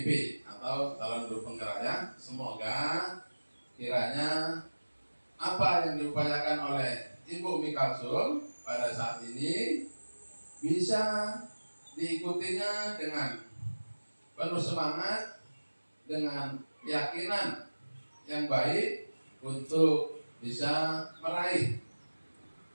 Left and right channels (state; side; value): inverted; both; correlation -1.00